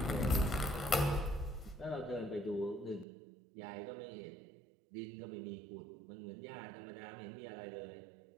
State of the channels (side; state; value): left; drops out; at 3.1 s